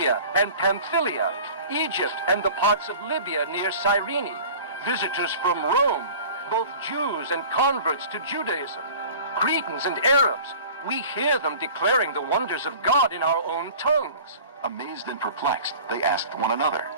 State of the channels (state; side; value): inverted; both; correlation -0.42